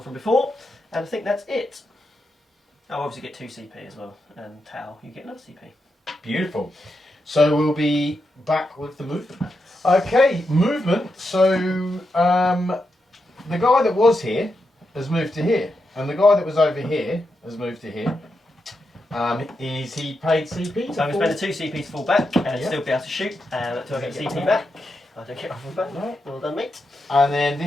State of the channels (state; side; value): normal; both; correlation 0.85